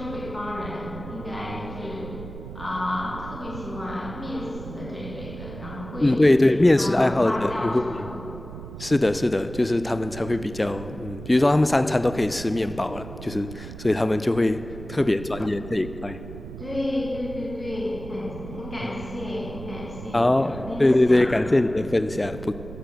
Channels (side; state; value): right; noise; rumble, 12 dB below the sound